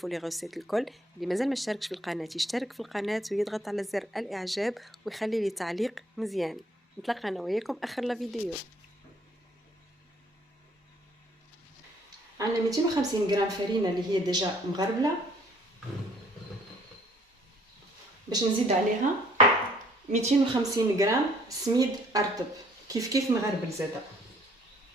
لي غوسيت الكل. اللي مازال ما اشتركش في القناه يشترك في القناه ويضغط على زر الاعجاب ويخلي لي تعليق مزيان. نتلاقى انا وياكم اخر لا فيديو. عندنا 250 غرام فرينه اللي هي ديجا مغربله، باش نزيد عليها 250 غرام سميد ارطب كيف مغربل زاده،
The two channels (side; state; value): both; normal; correlation 0.61